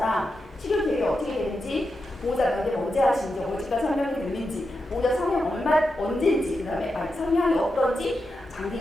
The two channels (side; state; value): both; normal; correlation 0.88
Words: 치료 계획이 어떻게 되는지, 보호자 면접 언제 하시는지, 언제까지 설명이 됐는지, 보호자 성형 언제인지, 그 다음에 성향이 어떤지, 장기